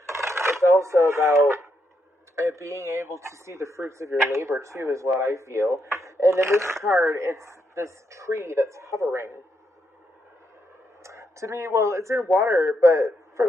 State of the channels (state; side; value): normal; both; correlation 0.80